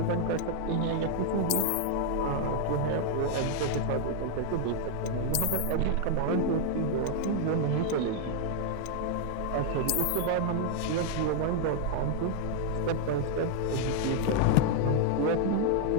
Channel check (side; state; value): both; different; correlation 0.00